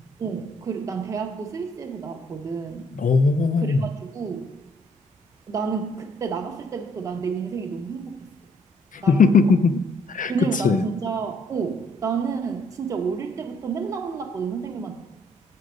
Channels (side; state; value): both; normal; correlation 0.66